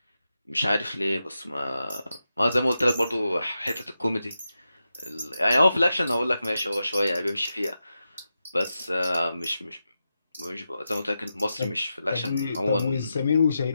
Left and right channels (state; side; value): inverted; both; correlation -0.89